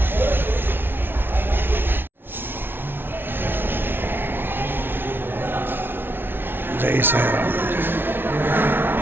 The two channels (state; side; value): late; left; 0.10 ms